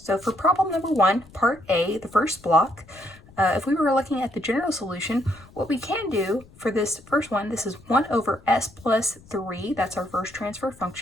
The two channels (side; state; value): left; noise; rumble, 24 dB below the sound